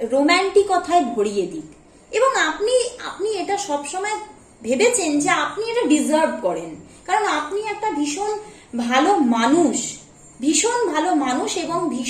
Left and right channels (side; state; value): both; identical; correlation 1.00